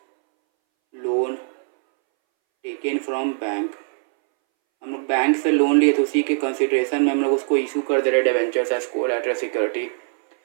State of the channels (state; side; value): silent; left; 63 dB below the other